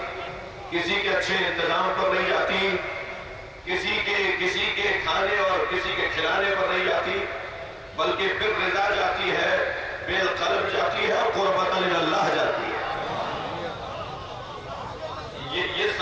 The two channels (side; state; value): both; identical; correlation 1.00